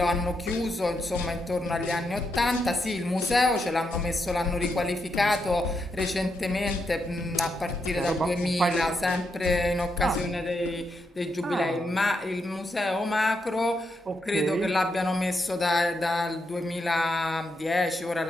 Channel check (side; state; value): both; normal; correlation 0.82